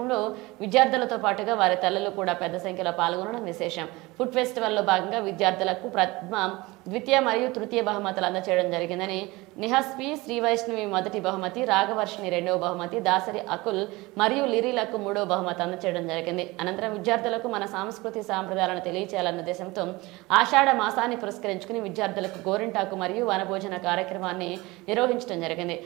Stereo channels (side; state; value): left; quieter; 22.0 dB